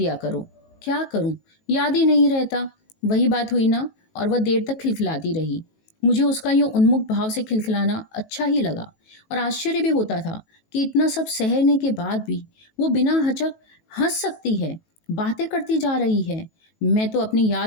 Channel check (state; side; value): late; right; 18 ms